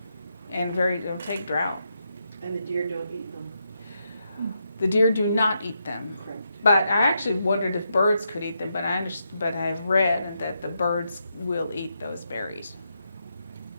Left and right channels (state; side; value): inverted; both; correlation -0.82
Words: and it'll take drought. And the deer don't eat them? The deer do not eat them. Correct. But I actually wondered if birds could eat them, but I've read that the birds will eat those berries.